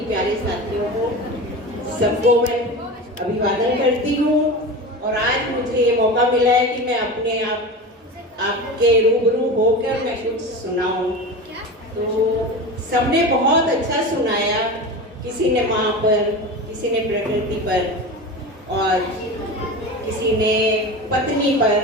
प्यारे साथियों को, सबको मैं अभिवादन करती हूँ। और आज मुझे ये मौका मिला है कि मैं अपने आपके रूबरू होकर मैं कुछ सुनाऊँ। तो सबने बहुत अच्छा सुनाया, किसी ने माँ पर, किसी ने प्रकृति पर और किसी ने पत्नी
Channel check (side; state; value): both; normal; correlation 0.28